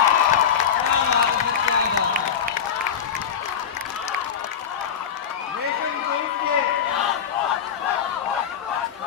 रेशम जुल्फ के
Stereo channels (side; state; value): right; quieter; 8.0 dB